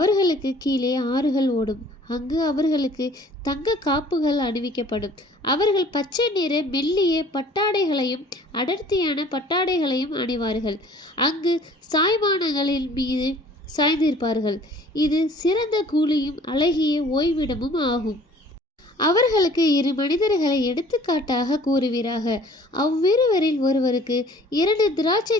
கீழே ஆறுகள் ஓடும். அங்கு அவர்களுக்கு தங்க காப்புகள் அணிவிக்கப்படும். அவர்கள் பச்சை நிற மெல்லிய பட்டாடைகளையும் அடர்த்தியான பட்டாடைகளையும் அணிவார்கள். அங்கு சாய்வானங்களின் மீது சாய்ந்திருப்பார்கள். இது சிறந்த கூலியும் அழகிய ஓய்விடமும் ஆகும். அவர்களுக்கு இரு மனிதர்களை எடுத்துக்காட்டாக கூறுவீராக. அவ்விருவரில் ஒருவருக்கு 2 திராட்சை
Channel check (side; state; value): both; normal; correlation 0.52